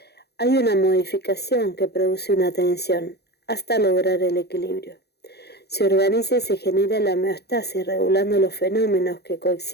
hay una modificación que produce una tensión. hasta lograr el equilibrio. Se organiza y se genera la homeostasis, regulando los fenómenos que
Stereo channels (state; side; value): late; right; 0.48 ms